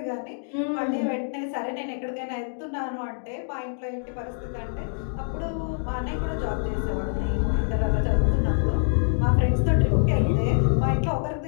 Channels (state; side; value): silent; right; digital silence